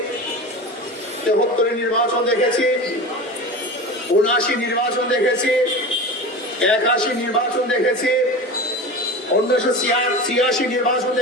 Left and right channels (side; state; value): both; normal; correlation 0.30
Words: 73 নির্বাচন দেখেছি, 79 নির্বাচন দেখেছি, 81 নির্বাচন দেখেছি, 1986 নির্বাচন